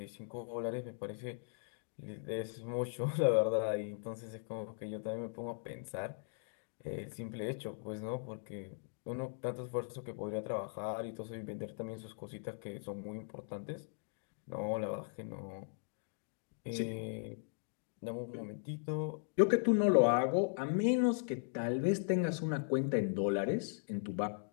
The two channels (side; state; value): right; silent; digital silence